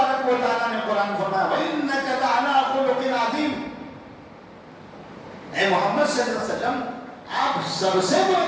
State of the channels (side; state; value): both; identical; correlation 1.00